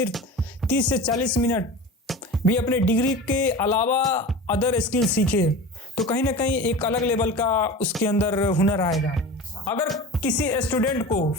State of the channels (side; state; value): both; normal; correlation 0.33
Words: 30 से 40 मिनट भी अपने डिग्री के अलावा अदर स्किल सीखे तो कहीं ना कहीं एक अलग लेवल का उसके अंदर हुनर आएगा। अगर किसी स्टूडेंट को